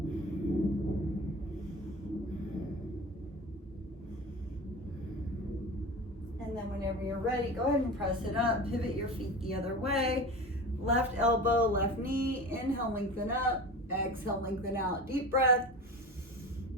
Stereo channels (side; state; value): both; normal; correlation 0.32